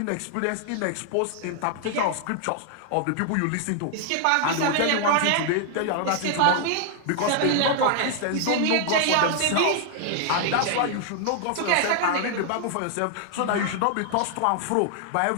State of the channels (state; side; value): different; both; correlation 0.00